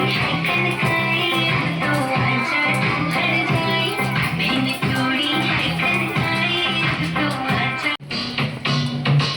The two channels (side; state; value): both; identical; correlation 1.00